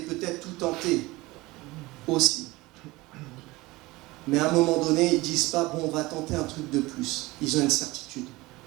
peut-être tout tenté aussi. Mais à un moment donné, ils ne disent pas, bon, on va tenter un truc de plus. Ils ont une certitude.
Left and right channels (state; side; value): quieter; left; 20.8 dB